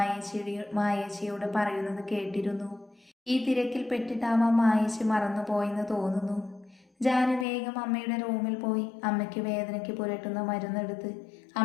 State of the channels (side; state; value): right; drops out; at 7.5 s